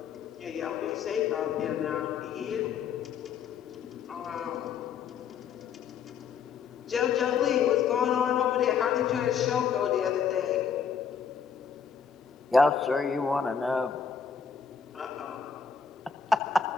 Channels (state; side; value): quieter; right; 6.7 dB